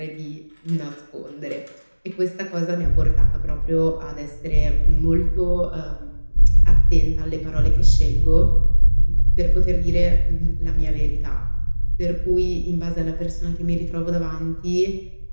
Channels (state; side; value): inverted; both; correlation -1.00